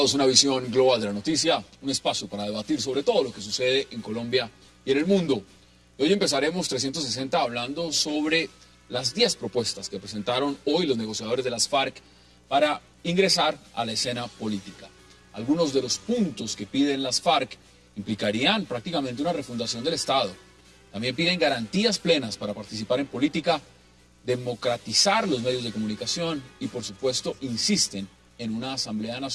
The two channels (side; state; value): both; identical; correlation 1.00